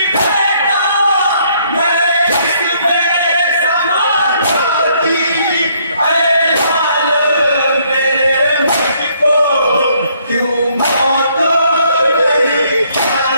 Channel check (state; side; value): inverted; both; correlation -0.67